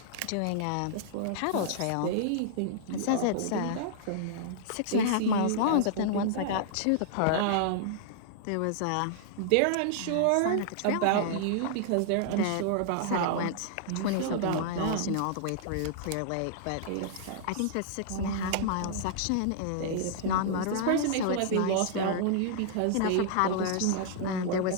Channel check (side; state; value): both; different; correlation -0.01